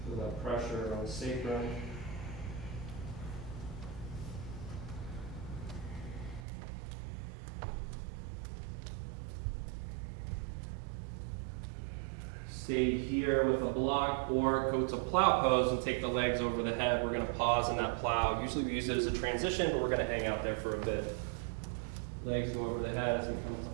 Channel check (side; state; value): left; drops out; at 6.5 s